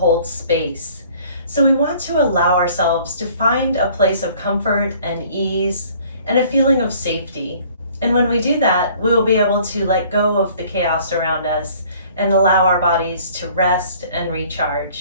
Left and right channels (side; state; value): both; inverted; correlation -0.54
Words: Space. So we want to allow ourselves to find a place of comfort and ease and a feeling of safety. And when we do that, we will be able to let go of the chaos around us and allow our bodies to rest and